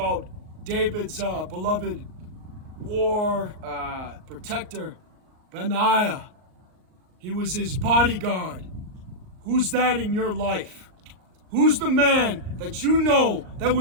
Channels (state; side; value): late; left; 38 ms